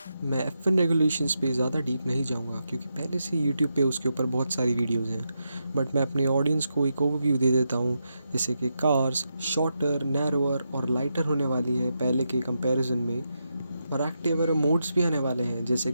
मैं F1 रेगुलेशंस पे ज़्यादा डीप नहीं जाऊंगा, क्योंकि पहले से यूट्यूब पे उसके ऊपर बहुत सारी वीडियोस हैं। बट मैं अपने ऑडियंस को एक ओवरव्यू दे देता हूँ, जैसे कि कार्स शॉर्टर, नैरोअर और लाइटर होने वाली है पहले के कंपैरिजन में, और एक्टिव मोड्स भी आने वाले हैं जैसे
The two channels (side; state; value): both; inverted; correlation -0.85